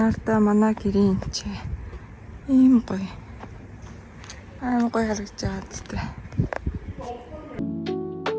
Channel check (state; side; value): identical; both; correlation 1.00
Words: манай гэрийн чи ийм гоё. Аа гоё харагдаж байгаа зү.